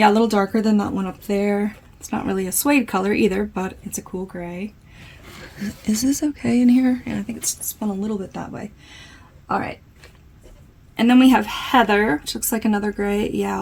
a little darker than that one up there. It's not really a suede color either, but it's a cool gray. Is this okay in here? Yeah, I think it's spun a little bit that way. All right. And then we have Heather, which looks like another gray.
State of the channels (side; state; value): both; identical; correlation 1.00